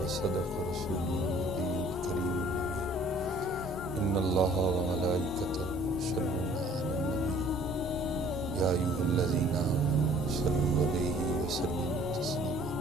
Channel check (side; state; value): both; normal; correlation 0.55